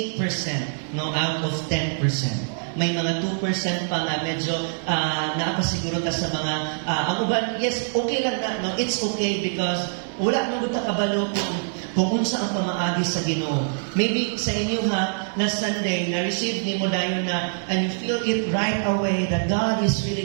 8%, no, out of 10%. May mga 2% pa nga medyo naapasiguro ka sa mga ang uban, yes, okay lang na, no? It's okay because wala nang buta kabalo kung unsa ang pamaagi sa Ginoo. Maybe sa inyo last Sunday, na-receive ni mo dayon na, and you feel it right away that God is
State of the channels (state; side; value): silent; left; digital silence